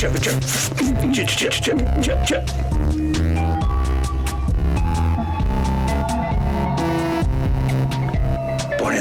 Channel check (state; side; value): identical; both; correlation 1.00